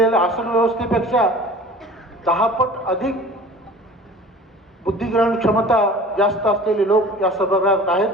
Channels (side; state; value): both; normal; correlation 0.43